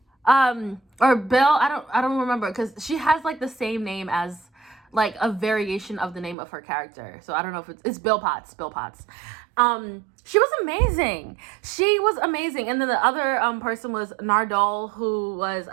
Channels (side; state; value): left; drops out; at 6.4 s